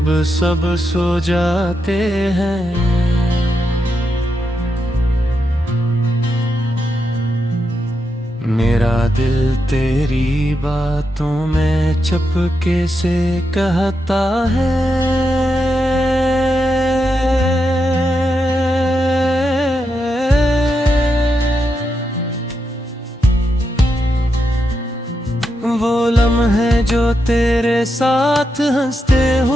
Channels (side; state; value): both; normal; correlation 0.85